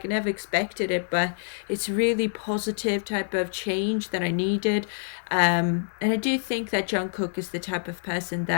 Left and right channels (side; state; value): right; silent; 60 dB below the other